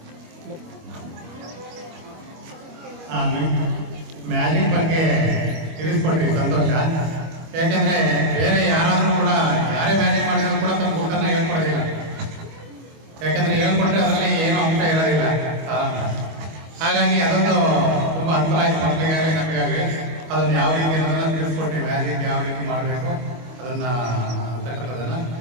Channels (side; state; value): left; late; 25 ms